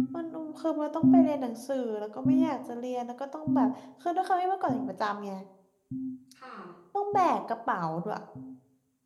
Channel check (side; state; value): both; identical; correlation 1.00